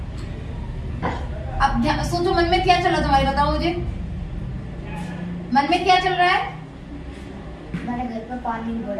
अब सोचो मन में क्या चल रहा है तुम्हारे, बताओ मुझे मन में क्या चल रहा है? हमारे घर पर पानी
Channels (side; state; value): both; identical; correlation 1.00